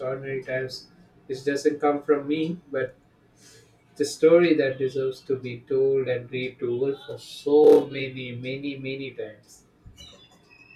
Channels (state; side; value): identical; both; correlation 1.00